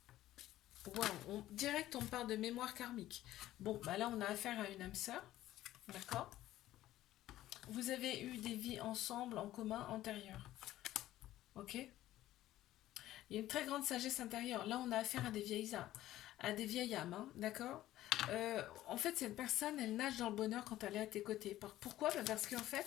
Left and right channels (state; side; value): quieter; right; 14.4 dB